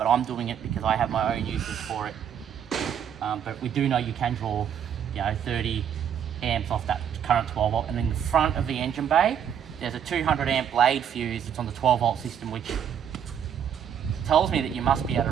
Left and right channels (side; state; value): left; quieter; 8.7 dB